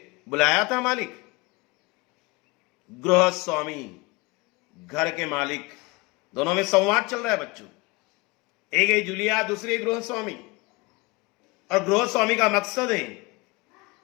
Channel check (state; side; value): quieter; right; 24.9 dB